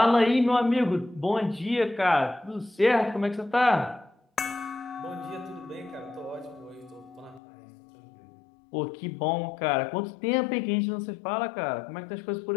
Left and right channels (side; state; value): right; drops out; at 7.4 s